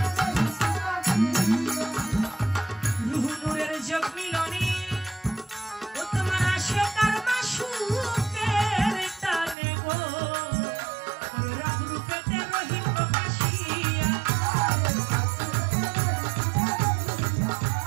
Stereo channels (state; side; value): drops out; left; at 9.6 s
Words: রুহু নূরের যোগ মিলনে ও তোমার আসে কারমা সুখের টানে গো রব রূপেতে রহিম প্রকাশিয়া